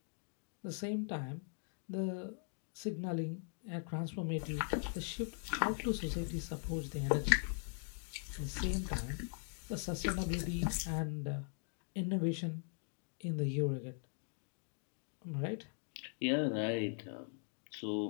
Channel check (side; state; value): right; silent; 51 dB below the other